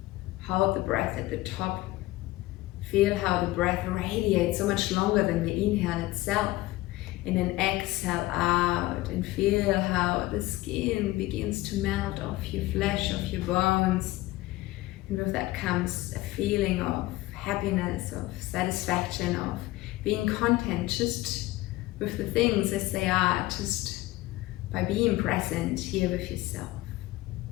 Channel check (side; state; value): right; quieter; 18.3 dB